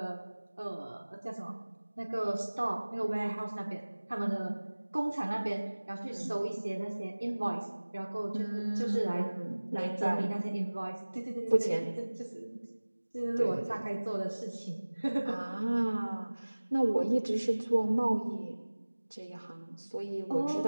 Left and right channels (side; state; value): both; inverted; correlation -1.00